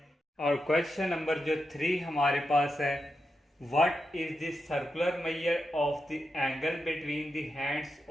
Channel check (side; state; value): both; normal; correlation 0.87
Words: और क्वेश्चन नंबर जो 3 हमारे पास है, What is the circular measure of the angle between the hands